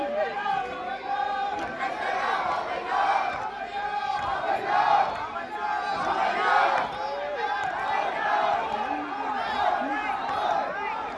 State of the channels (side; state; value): both; identical; correlation 1.00